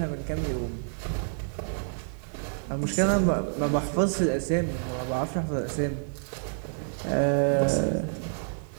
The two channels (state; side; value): silent; left; digital silence